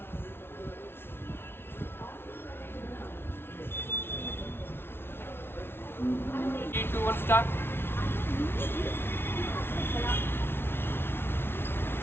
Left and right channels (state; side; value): late; right; 0.11 ms